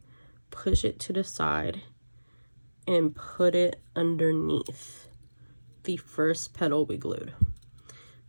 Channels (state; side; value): inverted; both; correlation -1.00